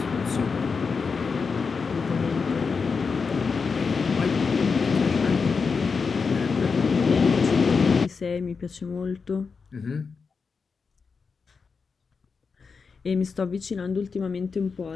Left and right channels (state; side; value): quieter; right; 5.1 dB